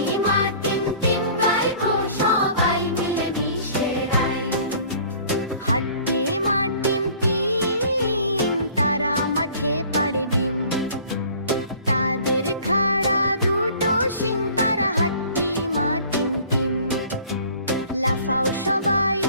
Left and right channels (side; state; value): both; inverted; correlation -0.50